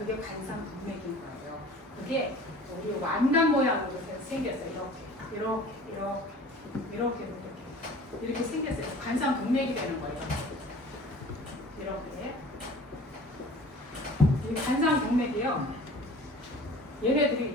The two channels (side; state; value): both; normal; correlation 0.44